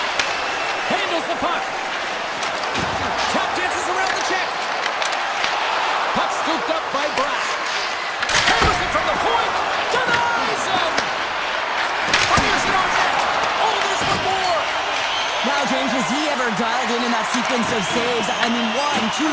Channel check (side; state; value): both; identical; correlation 1.00